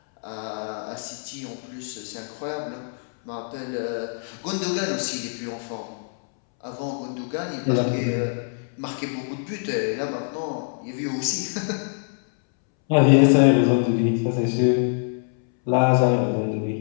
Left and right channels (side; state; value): right; silent; 62 dB below the other